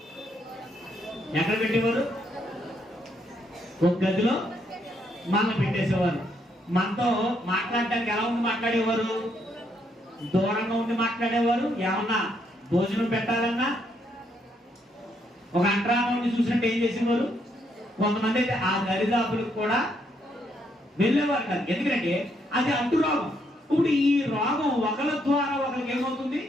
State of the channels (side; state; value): both; normal; correlation 0.74